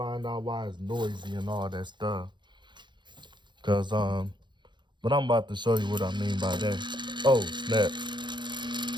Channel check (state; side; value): late; left; 0.22 ms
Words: out why it's noisy and all that stuff. But I'm about to show you what I mean by that. Oh, snap.